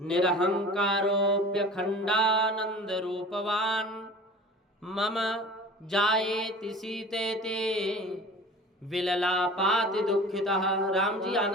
रूपवान मम जायेति सीतेति विललापाति दुखितः। राम जी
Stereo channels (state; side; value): normal; both; correlation 0.41